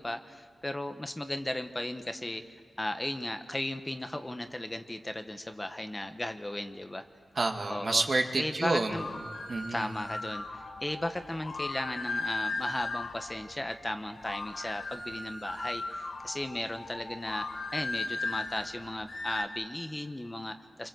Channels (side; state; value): both; normal; correlation 0.95